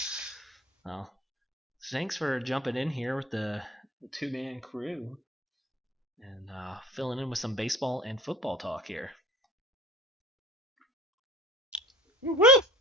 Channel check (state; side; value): normal; both; correlation 0.43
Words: Well, thanks for jumping in here with the two-man crew and filling in with some baseball and football talk here. Woo!